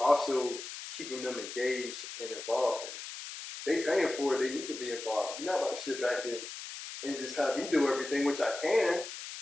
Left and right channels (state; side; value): noise; left; hiss, 10 dB below the sound